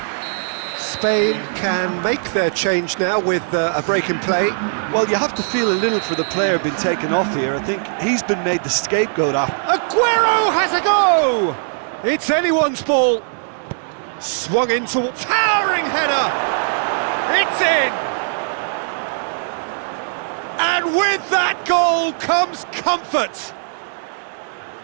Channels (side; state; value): left; silent; 66 dB below the other